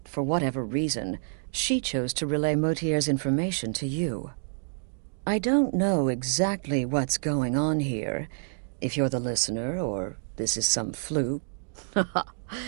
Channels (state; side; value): silent; left; digital silence